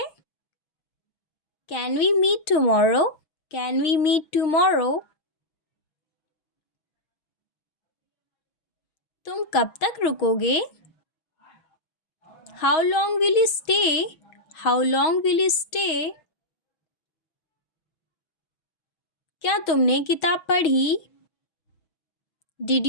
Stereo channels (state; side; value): late; right; 6.4 ms